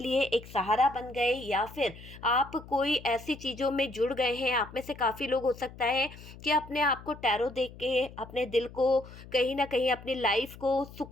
एक सहारा बन गए, या फिर आप कोई ऐसी चीज़ों में जुड़ गए हैं। आप में से काफ़ी लोग हो सकता है कि अपने आप को टैरो देख के अपने दिल को, कहीं ना कहीं अपनी लाइफ को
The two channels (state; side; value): noise; left; hum, 17 dB below the sound